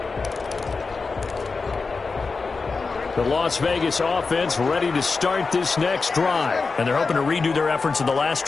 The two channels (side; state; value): right; quieter; 4.4 dB